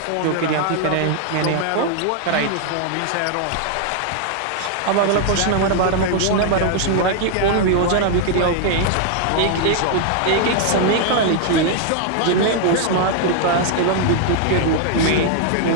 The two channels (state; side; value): different; both; correlation 0.00